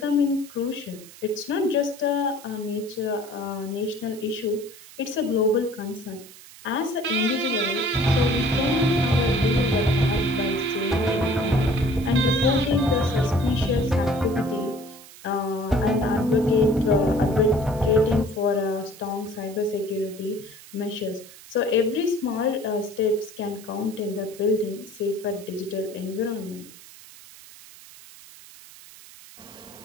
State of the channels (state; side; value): noise; right; hiss, 19 dB below the sound